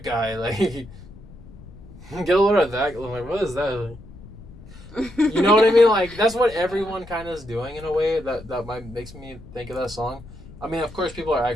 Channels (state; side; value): noise; left; rumble, 18 dB below the sound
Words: guy, like get a load of that. I'm like, what is that? Like, you know what I mean? Like that's what everyone kind of is doing in a way that makes me think of that song. I mean, of course, people